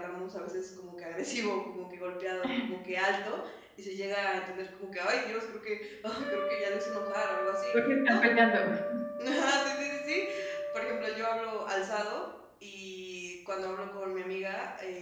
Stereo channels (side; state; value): both; identical; correlation 1.00